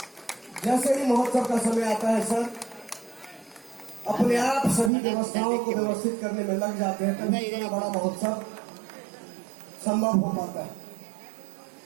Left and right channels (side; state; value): left; drops out; at 4.9 s